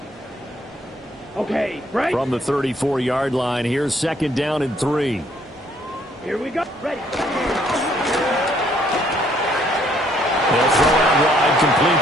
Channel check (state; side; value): normal; both; correlation 0.66